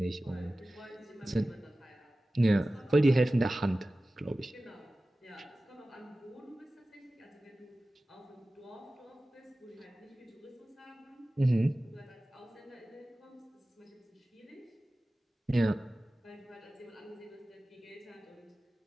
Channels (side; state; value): both; normal; correlation 0.96